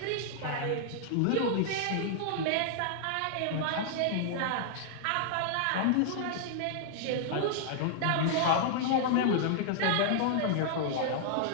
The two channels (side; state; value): both; different; correlation -0.01